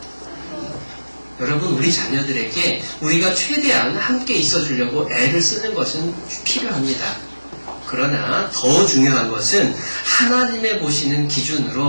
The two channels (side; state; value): both; inverted; correlation -1.00